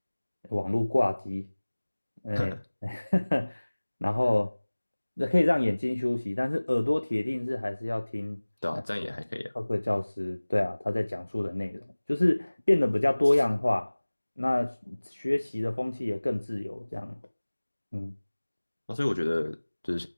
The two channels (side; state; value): both; inverted; correlation -1.00